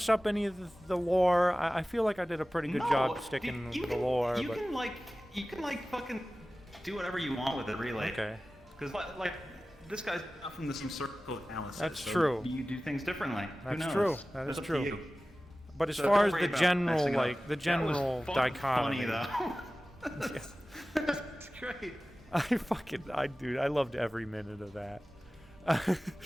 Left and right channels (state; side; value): normal; both; correlation 0.96